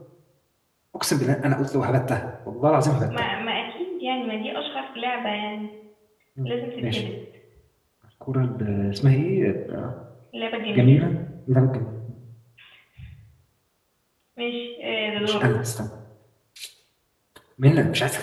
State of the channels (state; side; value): identical; both; correlation 1.00